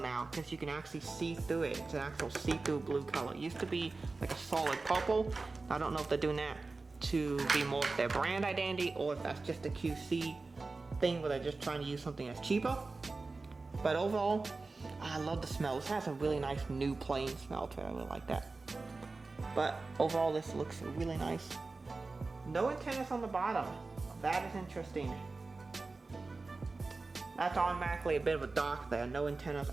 because you can actually see through it. It's an actual see-through blue color. It used to be like a solid purple. I don't know if they're doing that to be more of their brand identity, or if that's just a QC thing where they're just trying to use something that's cheaper. But overall, I love the smell. This has a really nice new plane smell to it. I really like that. But overall, this looks really nice. No antennas on the bottom. That is interesting. That's automatically a bit of a dock there. No antennas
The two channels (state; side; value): quieter; left; 3.7 dB